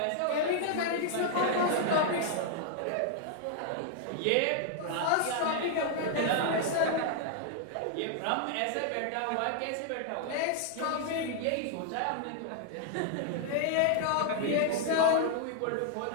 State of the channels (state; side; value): different; both; correlation 0.00